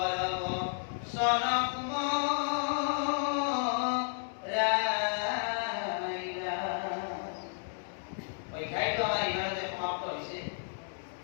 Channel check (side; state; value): right; silent; digital silence